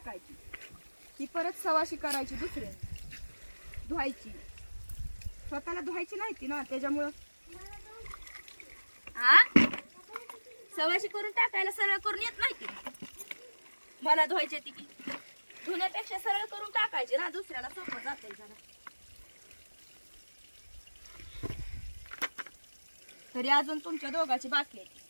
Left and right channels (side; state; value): both; inverted; correlation -1.00